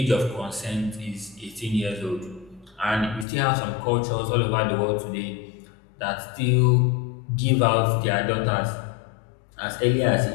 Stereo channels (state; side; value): drops out; right; at 3.2 s